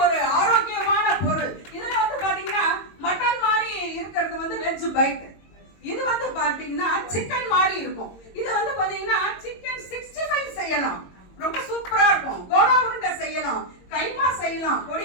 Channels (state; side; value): late; right; 22 ms